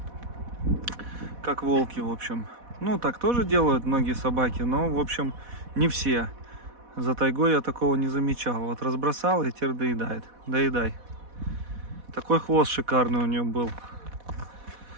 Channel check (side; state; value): left; late; 4.1 ms